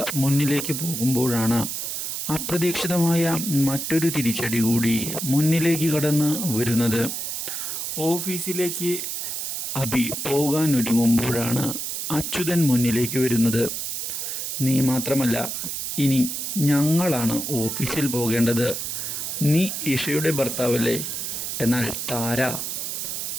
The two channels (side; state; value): right; noise; hiss, 4 dB below the sound